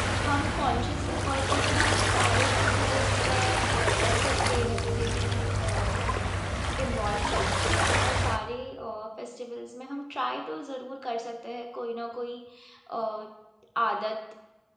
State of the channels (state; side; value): identical; both; correlation 1.00